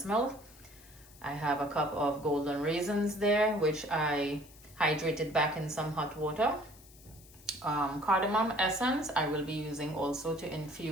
milk. I have a cup of golden raisins there, which I hydrated back in some hot water. Cardamom essence I will be using also to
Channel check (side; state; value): left; noise; hiss, 23 dB below the sound